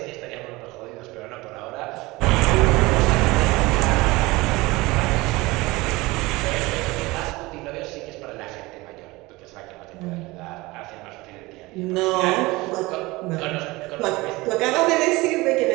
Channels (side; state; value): left; quieter; 21.6 dB